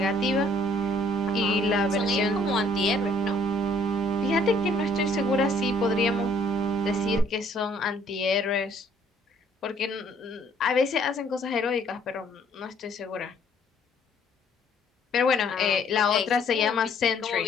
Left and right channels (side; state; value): both; normal; correlation 0.62